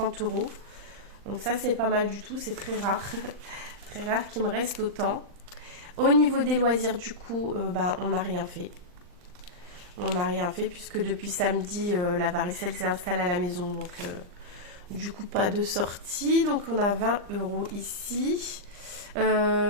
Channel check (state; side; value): late; left; 39 ms